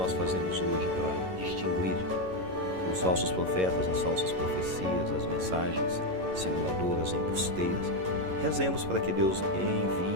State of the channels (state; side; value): late; left; 11 ms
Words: fazemos hoje para distinguir os falsos profetas, as falsas profecias, as mensagens simuladoras, embusteiras? Rezemos para que Deus